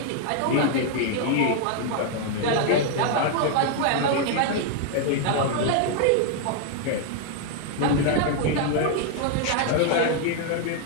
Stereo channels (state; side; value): different; both; correlation 0.00